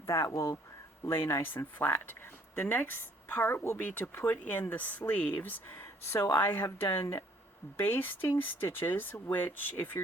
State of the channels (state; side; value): normal; both; correlation 0.61